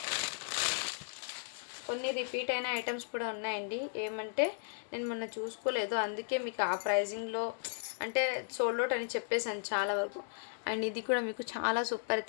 కొన్ని రిపీట్ అయిన ఐటమ్స్ కూడా ఉన్నాయండి. ఏమంటే నేను మొన్న చూసుకోలేదు, అందుకే మీకు ఆ ప్రైజింగ్లో అంటే సోల్డ్ అవుట్ అని చెప్పేసాను చాలా వరకు. అండ్ ఇది కూడా మీకు చాలా సూపర్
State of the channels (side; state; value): right; silent; digital silence